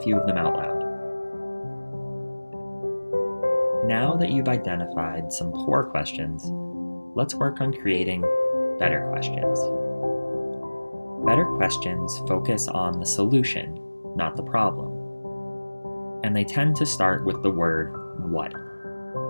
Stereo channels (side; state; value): both; inverted; correlation -1.00